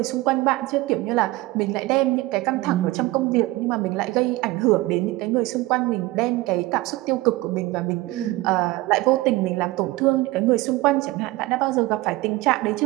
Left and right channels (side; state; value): left; quieter; 19.4 dB